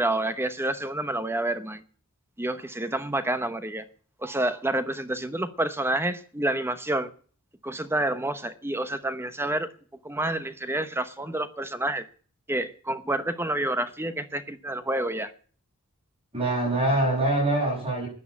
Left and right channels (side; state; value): both; normal; correlation 0.47